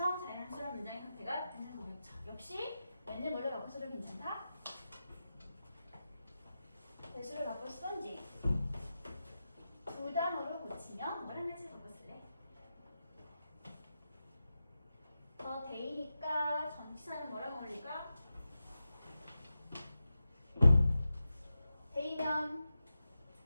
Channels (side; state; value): both; inverted; correlation -0.92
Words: 자연스러운 문장의 상태가 되는 거겠죠. 역시 웬을 뭘로 바꿔서도 괜찮다. 대수를 바꿔 쓰던지 두 단어로 고치면 뭐랑 같이 바꿔쓸래? 너 데이니까 전치사는 뭐랑 어울릴까? 데이면